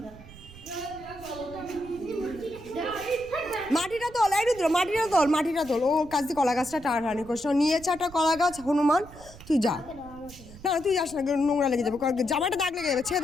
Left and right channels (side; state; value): right; noise; rumble, 19 dB below the sound